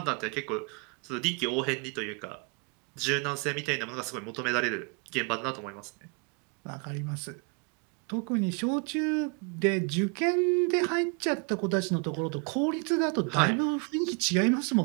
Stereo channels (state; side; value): quieter; left; 34.1 dB